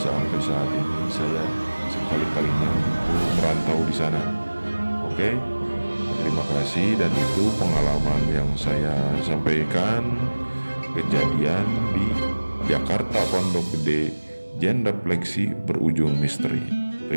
saat ini saya sekali-kalinya untuk merantau di sana. Oke, terima kasih. Dan itu pengalaman yang saya sampaikan, kejadian di Jakarta Pondok Gede, genrefleksi berujung misteri.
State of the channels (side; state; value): both; inverted; correlation -1.00